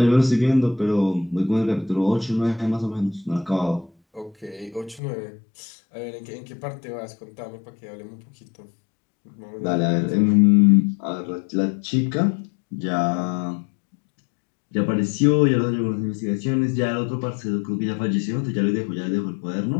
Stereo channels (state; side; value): drops out; right; at 5.0 s